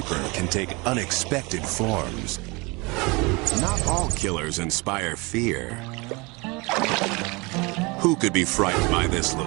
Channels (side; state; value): left; quieter; 26.6 dB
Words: can take unexpected forms. Not all killers inspire fear. Who could be frightened by this